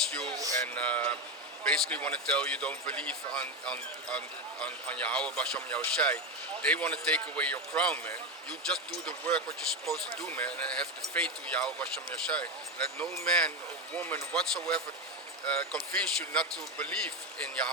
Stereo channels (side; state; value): both; normal; correlation 0.14